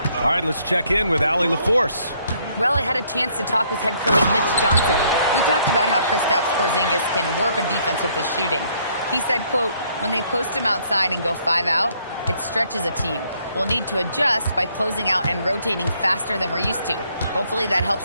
All right, let's check in with Allie LaForce. Well, I had a chance to talk with head coach Mitch Johnson. We talked about how Kristaps Porzingis can warp a defense with his shooting. He said, quote, when they post him outside and go 5 out, it stretches a team. We'll need to adjust by closing out and rotating faster than we're used to. Hopefully that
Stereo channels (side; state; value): both; inverted; correlation -0.67